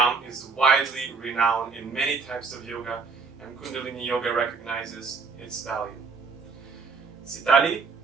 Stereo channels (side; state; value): left; quieter; 4.8 dB